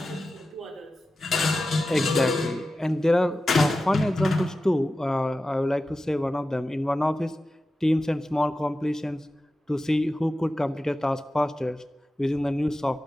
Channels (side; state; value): both; normal; correlation 0.93